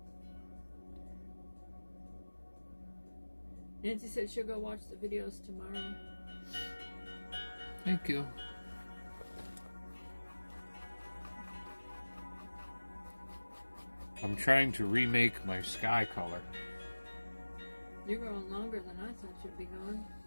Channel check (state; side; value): inverted; both; correlation -1.00